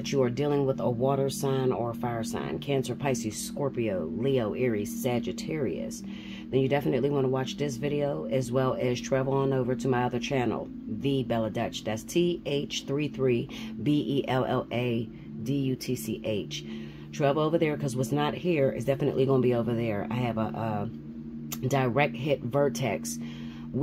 you are dealing with a water sign or a fire sign, Cancer, Pisces, Scorpio, Leo, Aries, Sagittarius, then you definitely want to watch this video, as well as travel on over to my other channel, The Bella Dutch. That's TH33BELLADUTCH. Travel over there, because what's not here is definitely going to be over there. I have a direct hit Vertex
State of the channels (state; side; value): identical; both; correlation 1.00